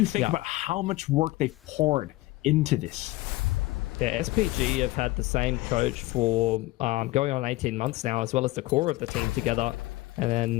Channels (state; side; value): quieter; right; 19.2 dB